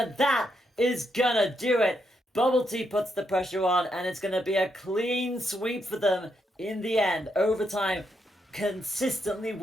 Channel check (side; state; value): both; normal; correlation 0.80